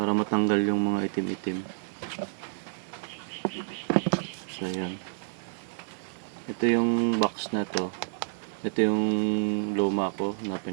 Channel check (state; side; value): silent; left; 55 dB below the other